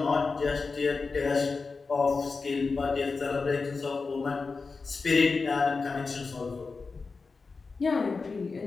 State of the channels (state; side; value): quieter; right; 4.4 dB